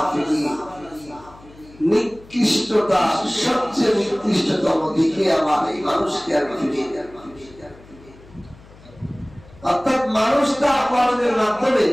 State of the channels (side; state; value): left; noise; hum, 23 dB below the sound